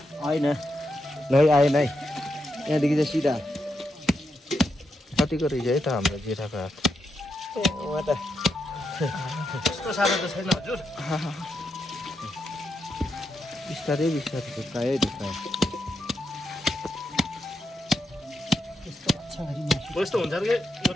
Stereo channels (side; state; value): both; normal; correlation 0.83